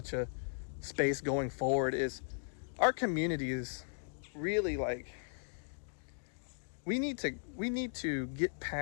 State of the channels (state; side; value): silent; right; digital silence